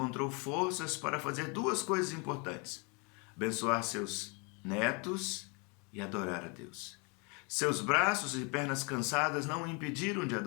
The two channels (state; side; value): quieter; right; 32.4 dB